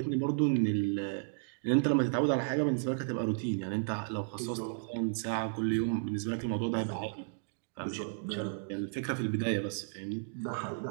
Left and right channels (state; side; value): silent; left; digital silence